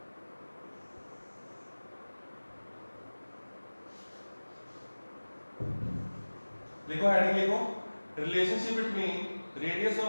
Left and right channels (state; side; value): inverted; both; correlation -1.00